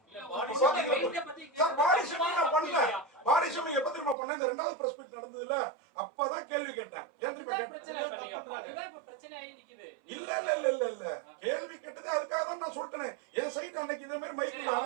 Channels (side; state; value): left; drops out; at 4.2 s